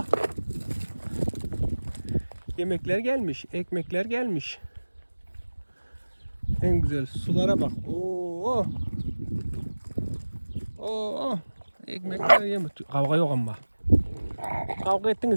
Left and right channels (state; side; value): inverted; both; correlation -1.00